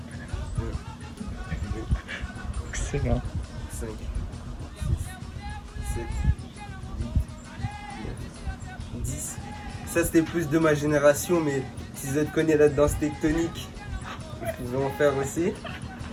Excellent. 5, 6, 7, 8, 9, 10. Ça c'était plus de ma génération, mais si vous êtes connu la danse tectonique, vous pouvez en faire aussi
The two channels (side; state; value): both; identical; correlation 1.00